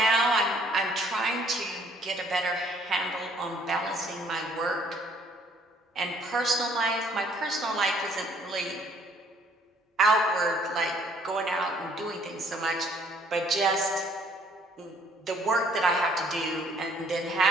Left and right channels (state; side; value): normal; both; correlation 0.62